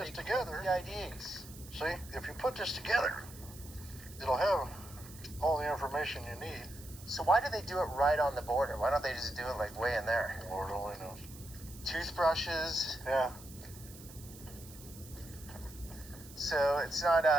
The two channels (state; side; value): noise; right; hiss, 18 dB below the sound